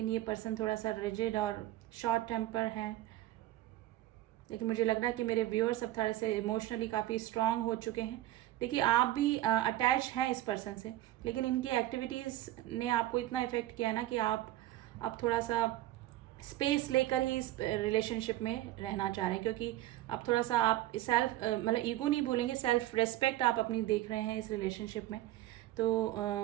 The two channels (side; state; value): left; quieter; 15.1 dB